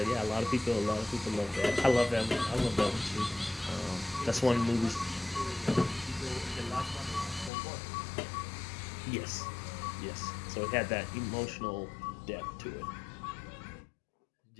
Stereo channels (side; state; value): right; drops out; at 7.5 s